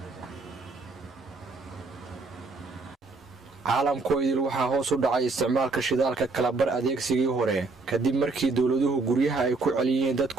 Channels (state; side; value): quieter; left; 3.7 dB